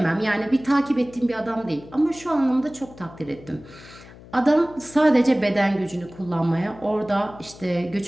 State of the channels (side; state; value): left; noise; hum, 20 dB below the sound